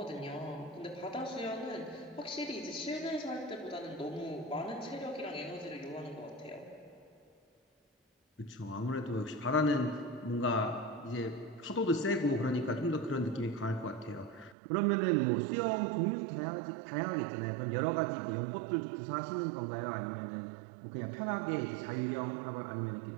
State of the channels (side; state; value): left; drops out; at 14.6 s